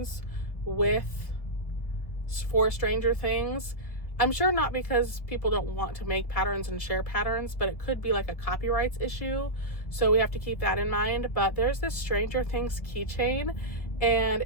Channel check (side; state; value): right; late; 1.7 ms